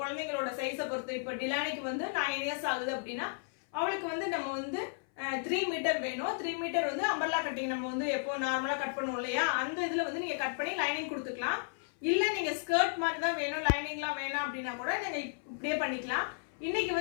குழந்தைங்களோட சைஸை பொறுத்து. இப்போ டிலானிக்கு வந்து 9 இயர்ஸ் ஆகுது அப்படின்னா அவளுக்கு வந்து நம்ம வந்து 3 மீட்டர் வேணும். 3 மீட்டர் வந்து அம்பர்லா கட்டிங் நம்ம வந்து எப்போ நார்மலா கட் பண்ணுவோம் இல்லையா, அந்த இதுல வந்து நீங்க கட் பண்ணி லைனிங் கொடுத்துக்கலாம். இல்ல நீங்க ஸ்கர்ட் மாதிரி தான் வேணும், லைனிங்லாம் வேணாம் அப்படின்னா கூட நீங்க இப்படியே பண்ணிக்கலாம். இன்னைக்கு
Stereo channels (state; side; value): silent; right; 55 dB below the other